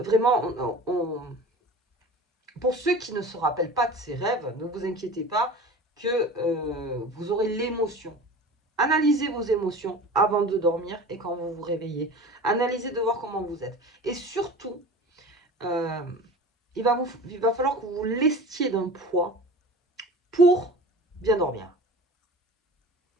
pour ceux qui ne se rappellent pas de ces rêves, ne vous inquiétez pas que vous aurez l'émotion. Analysez vos émotions avant de dormir et quand vous vous réveillez. Analysez de voir comment vous êtes. Et surtout, euh, il va falloir que vous vous lestiez d'un poids pour bien dormir.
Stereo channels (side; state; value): both; normal; correlation 0.37